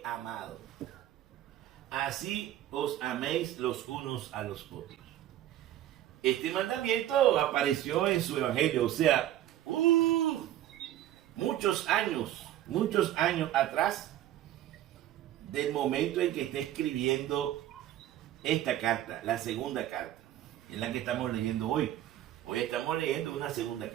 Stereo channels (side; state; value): left; quieter; 12.8 dB